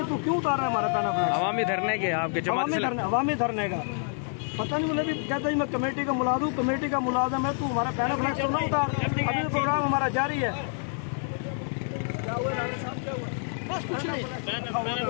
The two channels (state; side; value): silent; right; 56 dB below the other